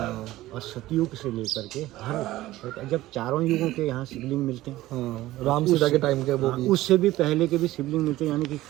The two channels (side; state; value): left; quieter; 16.4 dB